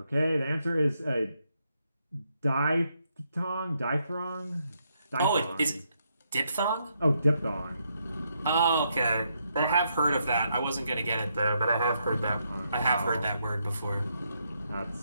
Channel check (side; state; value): both; inverted; correlation -0.78